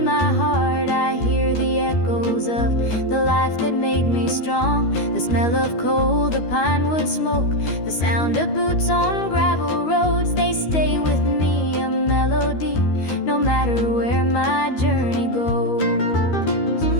my heart I hear the echoes of the life that made me strong. The smell of coal, the pine wood smoke, the sound of boots on gravel roads, they stay with me, a melody, no matter where my journey goes.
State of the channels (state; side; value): late; right; 13 ms